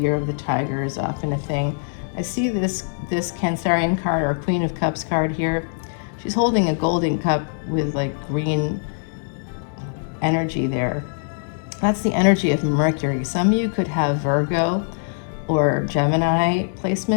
of the Tiger is often a thing. I see this Cancerian card, or Queen of Cups card here. She's holding a golden cup with like green energy there. That's the energy of Mercury. Some of you could have Virgo or Gemini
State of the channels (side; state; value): right; silent; digital silence